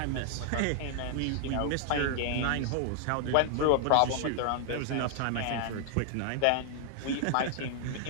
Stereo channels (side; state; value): both; different; correlation 0.00